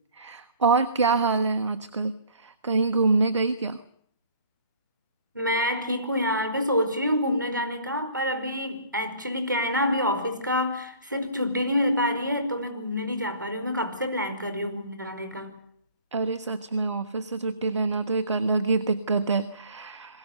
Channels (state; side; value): inverted; both; correlation -0.51